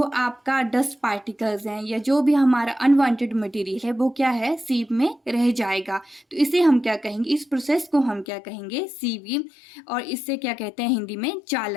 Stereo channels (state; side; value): drops out; right; at 8.2 s